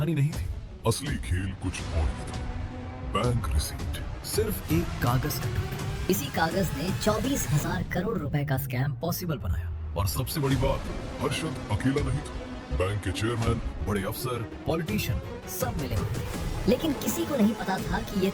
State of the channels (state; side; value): identical; both; correlation 1.00